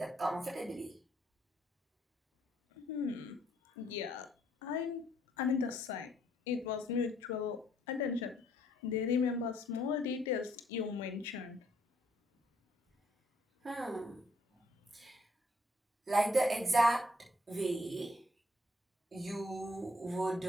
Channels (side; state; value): both; normal; correlation 0.68